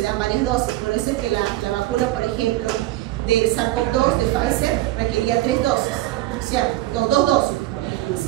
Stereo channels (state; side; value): quieter; left; 16.2 dB